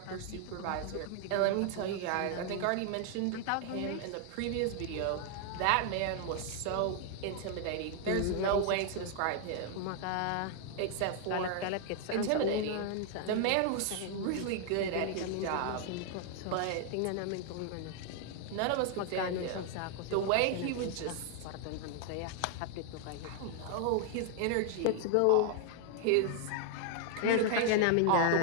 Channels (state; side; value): different; both; correlation 0.00